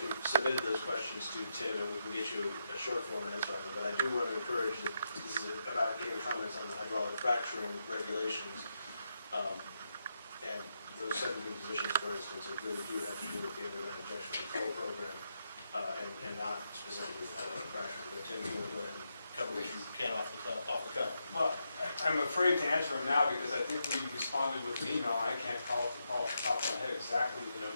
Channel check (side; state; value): both; inverted; correlation -0.83